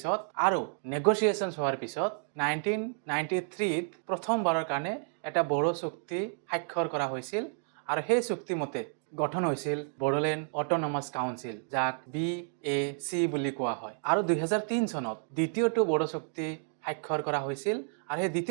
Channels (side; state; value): left; silent; digital silence